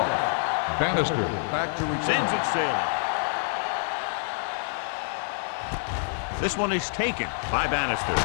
Bannister back to return. Sends it sailing. This one is taken by Bannister.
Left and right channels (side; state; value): right; silent; digital silence